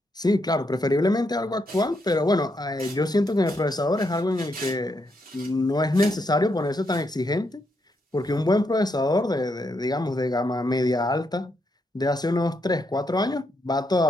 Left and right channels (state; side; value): normal; both; correlation 0.79